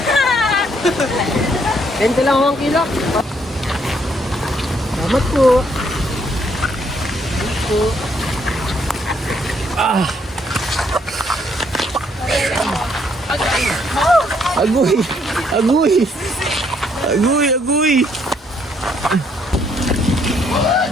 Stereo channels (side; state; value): both; normal; correlation 0.70